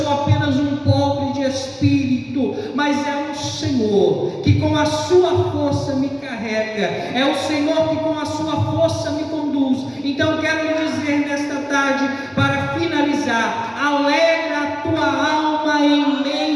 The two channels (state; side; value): identical; both; correlation 1.00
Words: apenas um pobre de espírito, mas é o Senhor que com a sua força me carrega. É o Senhor que com a sua força me conduz. Então quero lhe dizer nesta tarde, para finalizar: alegra a tua alma em